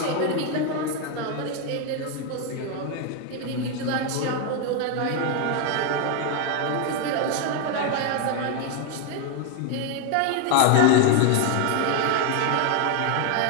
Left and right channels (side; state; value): both; different; correlation 0.01